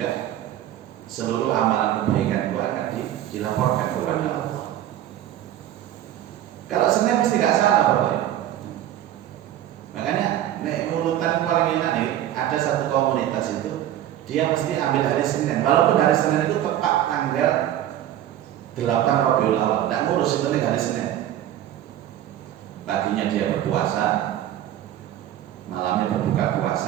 seluruh amalan kebaikan gua akan dilaporkan kepada Allah. Kalau Senin mesti nggak salah Bapak. Makanya urutan paling enak nih, ada satu komunitas itu dia mesti ambil hari Senin. Walaupun hari Senin itu tepat tanggal 8 Rabiul Awal, nggak ngurus, itu nih hari Senin. Paginya dia berpuasa, malamnya berbuka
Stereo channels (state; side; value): quieter; left; 12.2 dB